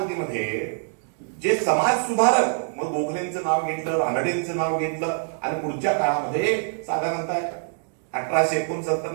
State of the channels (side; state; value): left; silent; digital silence